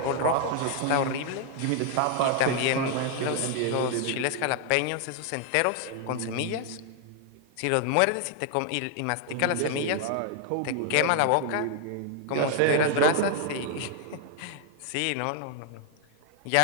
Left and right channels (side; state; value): both; different; correlation 0.00